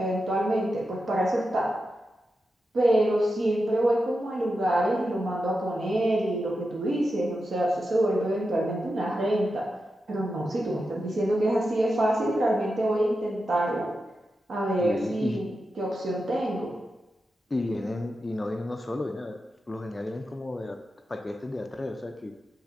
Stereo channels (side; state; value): both; normal; correlation 0.89